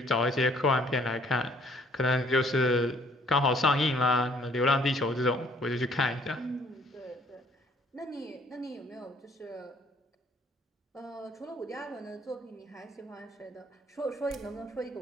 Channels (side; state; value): both; normal; correlation 0.61